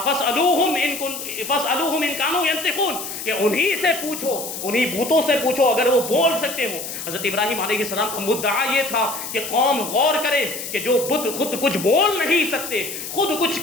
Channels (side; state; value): left; noise; hiss, 8 dB below the sound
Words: إِن كَانُوا يَنْطِقُونَ، کہ انہی سے پوچھو، انہی بتوں سے پوچھو اگر وہ بول سکتے ہوں. حضرت ابراہیم علیہ السلام کا مدعا یہ تھا کہ قوم غور کرے کہ جو بت خود کچھ بول نہیں سکتے، خود کچھ